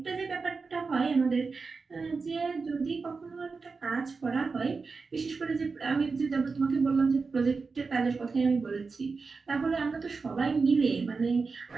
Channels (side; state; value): left; quieter; 4.5 dB